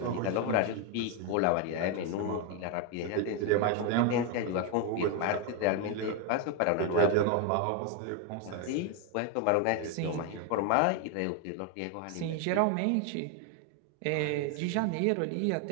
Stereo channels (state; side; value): different; both; correlation 0.01